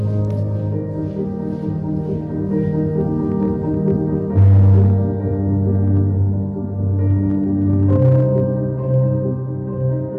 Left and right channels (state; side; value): identical; both; correlation 1.00